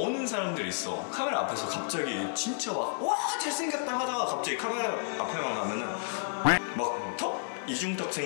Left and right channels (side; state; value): right; silent; digital silence